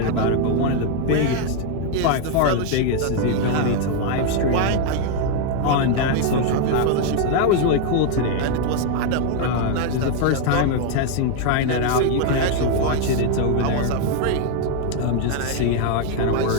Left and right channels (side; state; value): both; different; correlation 0.00